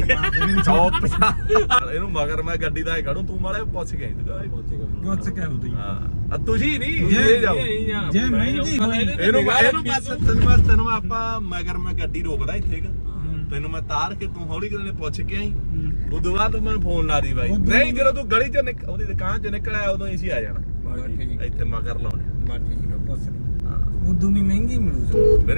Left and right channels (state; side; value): inverted; both; correlation -1.00